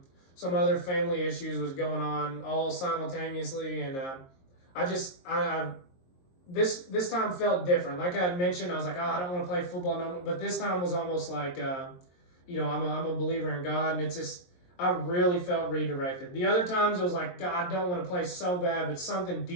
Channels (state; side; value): late; right; 22 ms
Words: Some other family issues was going on all simultaneously, and this time felt different. Like I had mentioned, I was like, I don't want to play football no more. But this time was almost like, I'm a believer in God, and it's just, I really felt redirected. The other times it was like, God, I don't want to play so bad, but something